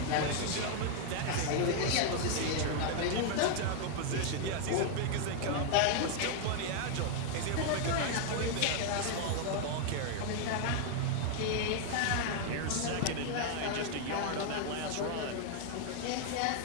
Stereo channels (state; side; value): different; both; correlation 0.00